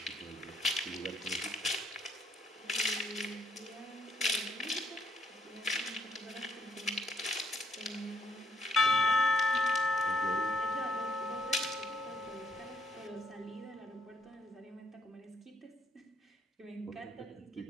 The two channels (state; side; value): normal; both; correlation 0.70